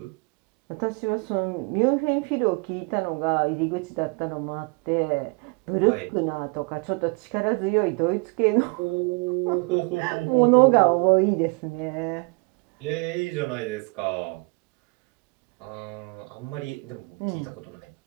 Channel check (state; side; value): quieter; left; 32.1 dB